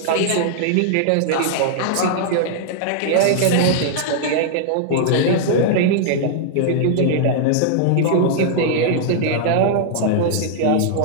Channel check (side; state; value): both; different; correlation -0.01